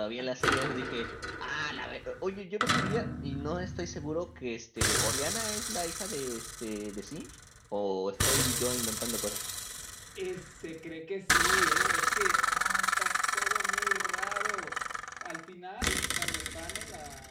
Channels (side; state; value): both; identical; correlation 1.00